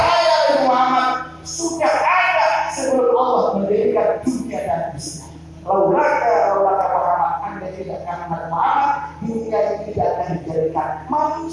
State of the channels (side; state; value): both; identical; correlation 1.00